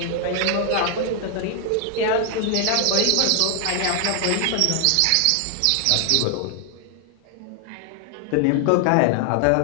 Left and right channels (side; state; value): both; different; correlation 0.00